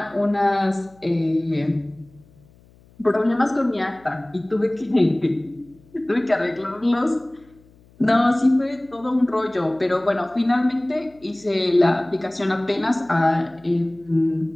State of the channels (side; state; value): left; noise; hum, 28 dB below the sound